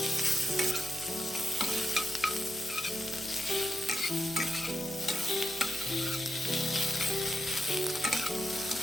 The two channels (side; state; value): right; noise; hum, 19 dB below the sound